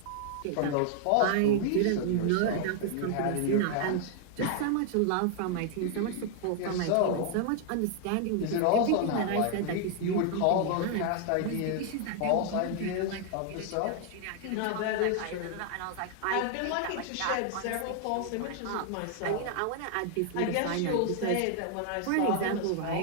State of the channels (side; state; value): both; different; correlation 0.00